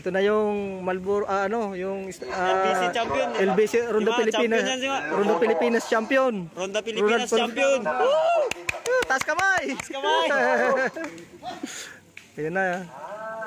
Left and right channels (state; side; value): identical; both; correlation 1.00